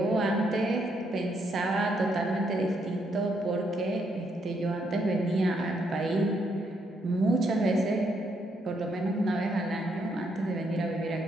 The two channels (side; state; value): both; normal; correlation 0.75